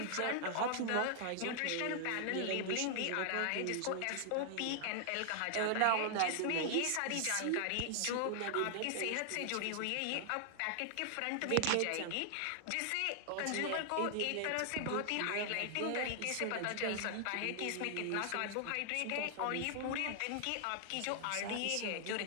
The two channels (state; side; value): different; both; correlation 0.00